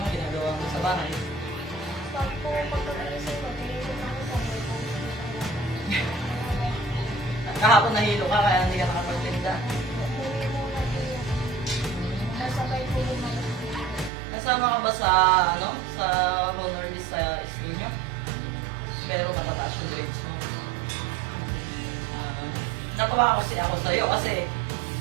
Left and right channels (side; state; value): left; drops out; at 14.1 s